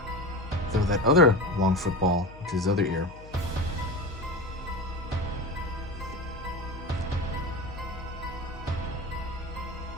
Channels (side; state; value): left; noise; hum, 17 dB below the sound